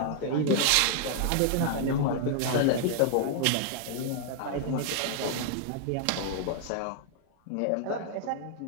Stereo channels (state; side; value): different; both; correlation 0.00